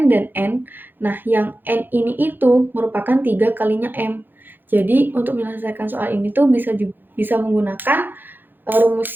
dan N, nah yang N ini itu merupakan 3 kalinya M. Jadi untuk menyelesaikan soal ini tuh bisa menggunakan rumus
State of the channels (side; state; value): left; late; 0.093 ms